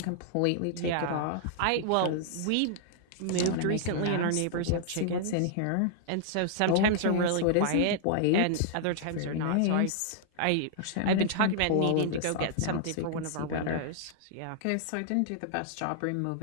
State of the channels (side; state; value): both; different; correlation -0.01